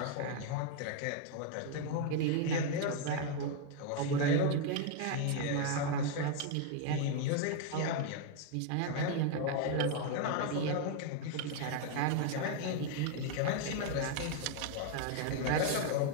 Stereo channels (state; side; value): different; both; correlation 0.00